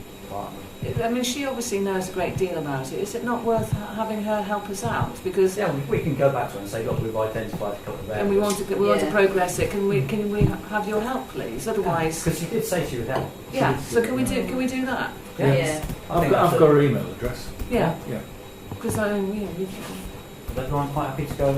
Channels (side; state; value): both; identical; correlation 1.00